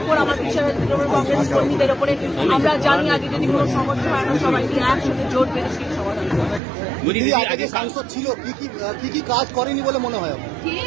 ওপর, আমার বিশ্বাস আছে কংগ্রেস কর্মীদের ওপরে। আমরা জানি আগে যদি কোনো সমস্যা হয় আমরা সবাই একসাথে জোট বেঁধে সেই সমাধান হবে। আগে যে সাংসদ ছিল কি কাজ করেনি বলে মনে হয়?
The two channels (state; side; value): drops out; left; at 6.6 s